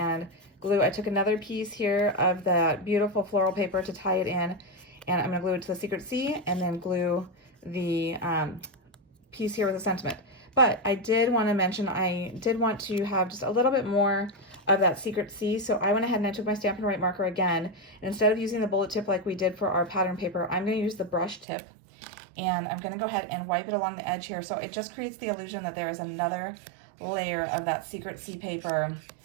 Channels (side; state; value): left; drops out; at 21.5 s